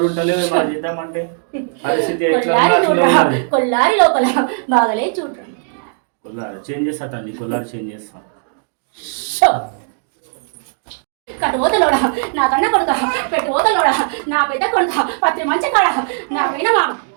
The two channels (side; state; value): left; silent; 62 dB below the other